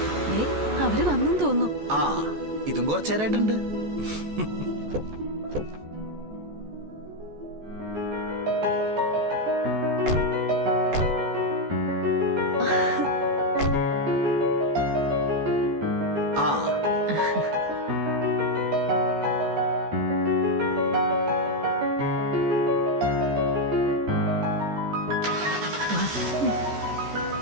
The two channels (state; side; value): late; left; 14 ms